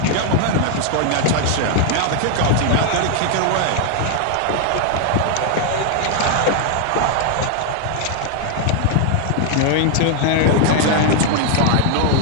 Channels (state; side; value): different; both; correlation 0.00